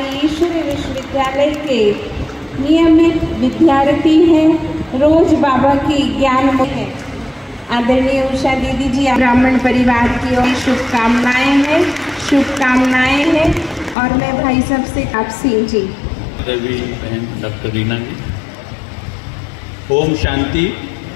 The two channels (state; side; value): drops out; right; at 14.0 s